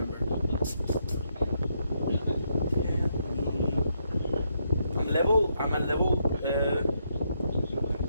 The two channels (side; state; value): both; inverted; correlation -0.77